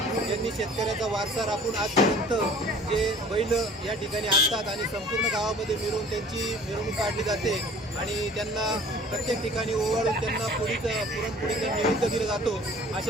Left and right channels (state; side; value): normal; both; correlation 0.49